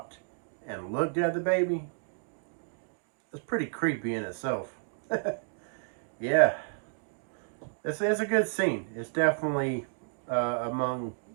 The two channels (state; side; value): silent; left; digital silence